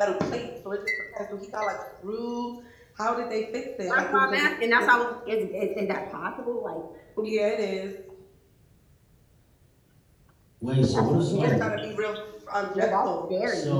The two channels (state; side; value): identical; both; correlation 1.00